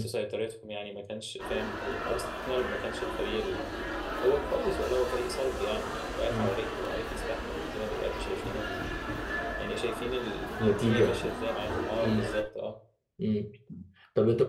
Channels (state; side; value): identical; both; correlation 1.00